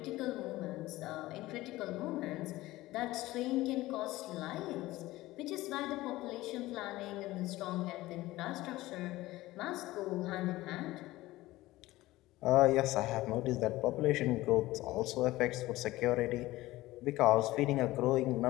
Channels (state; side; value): quieter; right; 17.8 dB